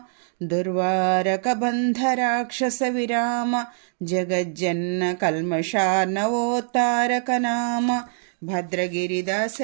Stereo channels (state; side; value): silent; left; digital silence